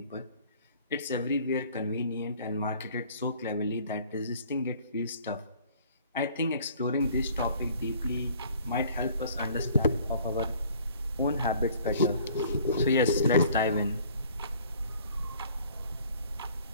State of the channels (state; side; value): inverted; both; correlation -0.54